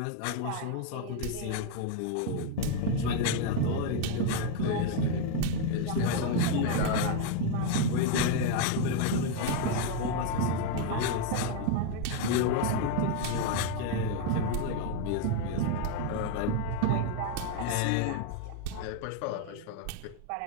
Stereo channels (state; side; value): different; both; correlation 0.01